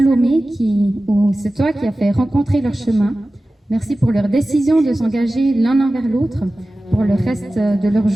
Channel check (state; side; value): normal; both; correlation 0.96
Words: c'est toi qui as fait rencontrer leur chemin. Merci pour leur décision de s'engager l'un envers l'autre pour le reste de leur